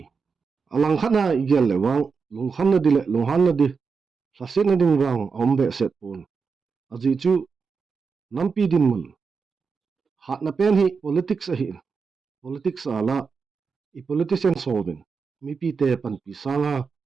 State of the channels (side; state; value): left; quieter; 5.3 dB